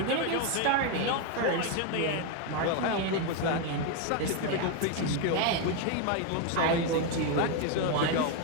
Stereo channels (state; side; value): different; both; correlation 0.01